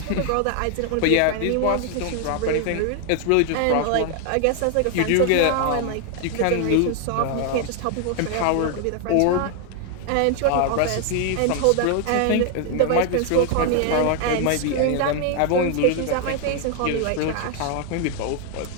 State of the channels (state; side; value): different; both; correlation 0.00